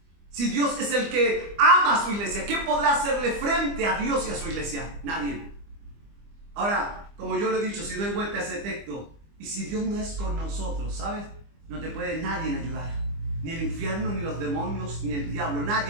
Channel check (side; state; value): left; late; 25 ms